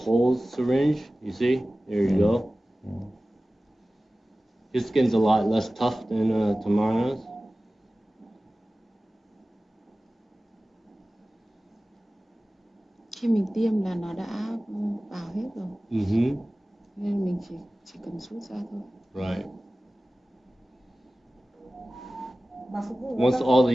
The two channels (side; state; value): both; normal; correlation 0.97